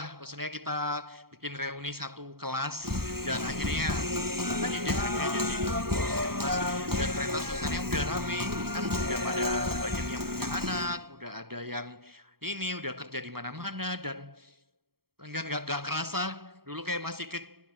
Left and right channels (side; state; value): left; late; 0.95 ms